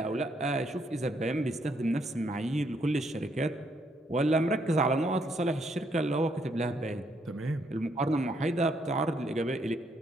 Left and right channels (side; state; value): both; normal; correlation 0.73